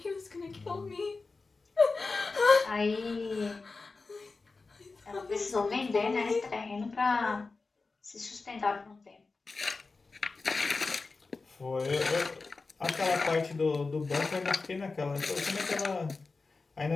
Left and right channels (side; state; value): right; quieter; 4.0 dB